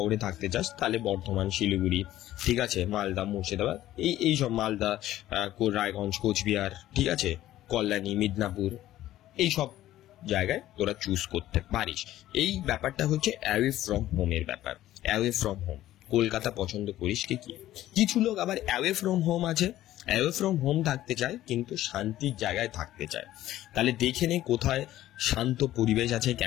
থাকতে চাস, তাহলে বর্ধমান, শিলিগুড়ি, ঠিক আছে, মালদা, মুর্শিদাবাদ, এই সব, মালদা, রায়গঞ্জ, কোচবিহার, ঠিক আছে, কল্যাণী, মিদনাপুর, এই সব জায়গায় তোরা চুজ করতে পারিস। এই ব্যাপারটা হচ্ছে অ্যাওয়ে ফ্রম হোমের ব্যাপার। অ্যাওয়ে ফ্রম হোম কলকাতা পছন্দ করিস কি? কিছু লোক আবার অ্যাওয়ে ফ্রম হোম আছে, অ্যাওয়ে ফ্রম হোম থাকতে চায় কিন্তু শান্তির জায়গায় থাকতে চায়। তাহলে দেখে নে কোথায় শান্ত পরিবেশ আছে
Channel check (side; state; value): right; quieter; 14.1 dB